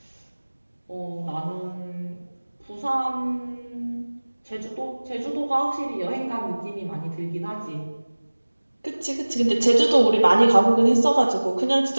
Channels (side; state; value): both; inverted; correlation -1.00